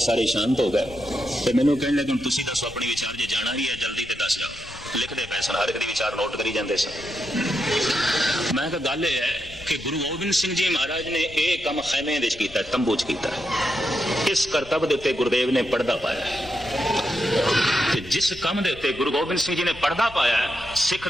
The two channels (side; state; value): left; noise; rumble, 19 dB below the sound